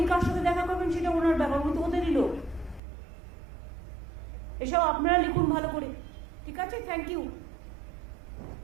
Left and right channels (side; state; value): left; drops out; at 2.8 s